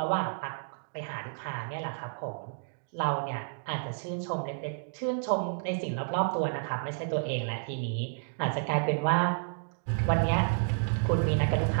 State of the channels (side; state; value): left; silent; digital silence